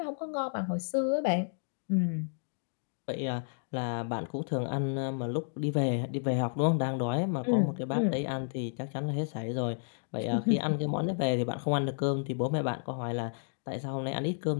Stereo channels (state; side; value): silent; right; digital silence